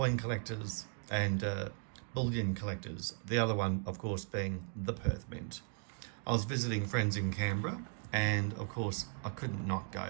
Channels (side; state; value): left; silent; 53 dB below the other